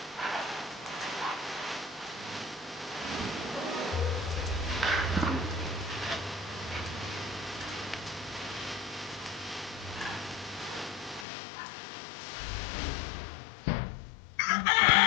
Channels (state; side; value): drops out; right; at 11.2 s